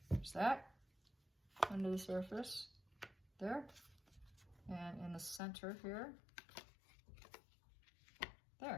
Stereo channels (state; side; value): drops out; right; at 5.4 s